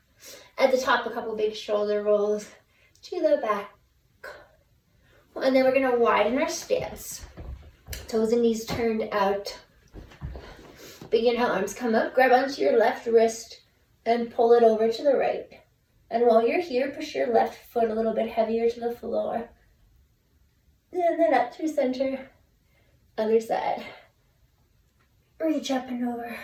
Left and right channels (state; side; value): identical; both; correlation 1.00